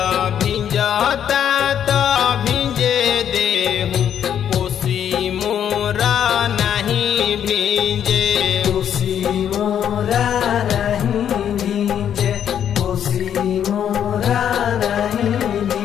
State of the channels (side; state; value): right; quieter; 9.3 dB